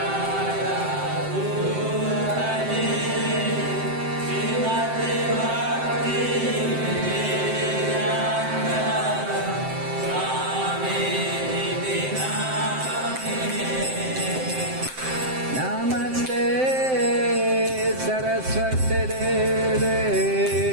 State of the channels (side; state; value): left; late; 7.7 ms